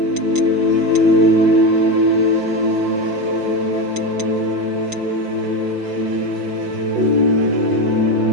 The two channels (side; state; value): left; late; 5.8 ms